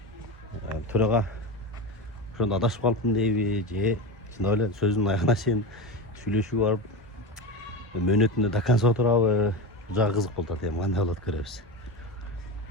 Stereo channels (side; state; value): both; normal; correlation 0.22